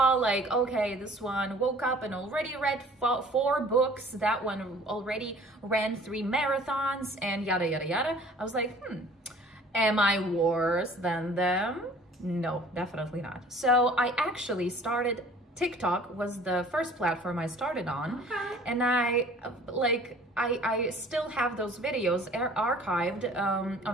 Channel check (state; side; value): normal; both; correlation 0.50